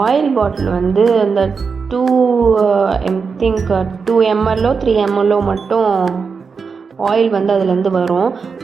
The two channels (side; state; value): left; quieter; 5.3 dB